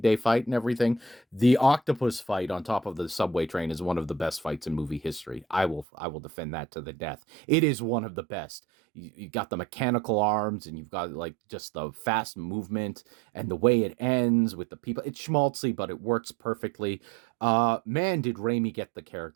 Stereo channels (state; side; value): drops out; left; at 5.9 s